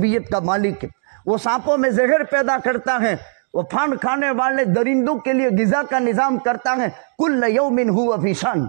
کا مالک ہے. وہ سانپوں میں زہر پیدا کرتا ہے, وہ پھاند کھانے والے درندوں کے لیے غذا کا نظام کرتا ہے. کل یوم ہوا فی شان,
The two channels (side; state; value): left; silent; digital silence